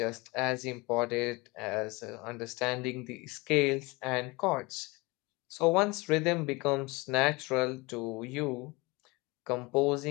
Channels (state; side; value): quieter; right; 24.7 dB